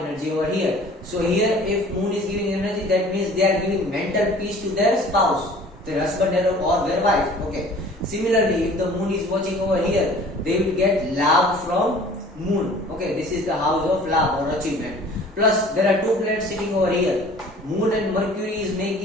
over here. So here if Moon is giving energy, that means they are giving mental peace to their spouse, their husband or their wife. Okay. Similarly, if the Moon is watching over here, they will get love from Moon. Okay. This is the house of love or achievement. Plus, there are two planets sitting over here. Moon and Mercury is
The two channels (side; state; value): both; normal; correlation 0.49